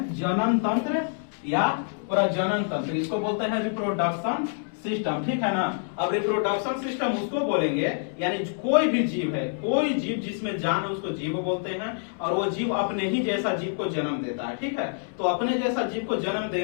जनन तंत्र या प्रजनन तंत्र, इसको बोलते हैं रिप्रोडक्शन सिस्टम। ठीक है ना। अब रिप्रोडक्शन सिस्टम उसको बोलेंगे यानी कोई भी जीव है, कोई जीव जिसमें जान है उसको जीव बोलते हैं, और वो जीव अपने ही जैसा जीव को जन्म देता है। ठीक है। तो अपने जैसा जीव को जन्म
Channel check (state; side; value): silent; right; 60 dB below the other